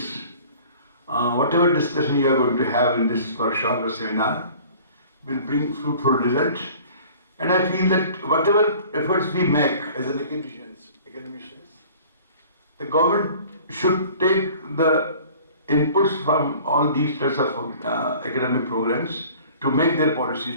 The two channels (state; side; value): inverted; both; correlation -0.47